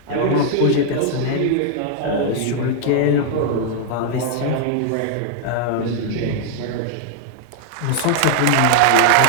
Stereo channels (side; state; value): both; different; correlation 0.00